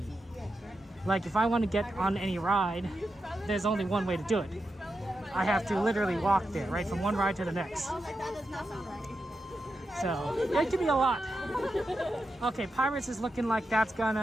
Like if I want to get on any ride, there's only one way to do it. I have to literally walk there, right, from one ride to the next. So it could be a lot. Okay, Pirates is looking like that's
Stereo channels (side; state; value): both; normal; correlation 0.88